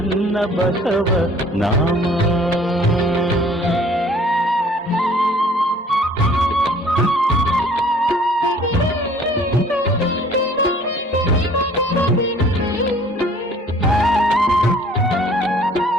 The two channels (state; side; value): normal; both; correlation 0.54